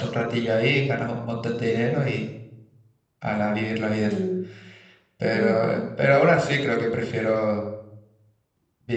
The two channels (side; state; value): both; identical; correlation 1.00